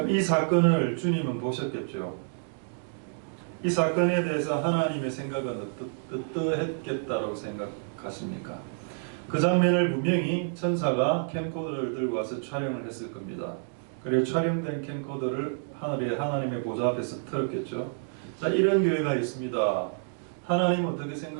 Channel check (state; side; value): silent; left; digital silence